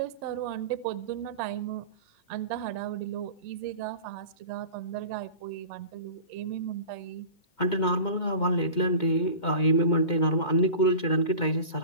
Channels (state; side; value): late; right; 2.2 ms